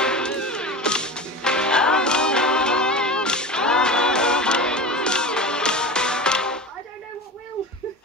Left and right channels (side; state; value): both; normal; correlation 0.30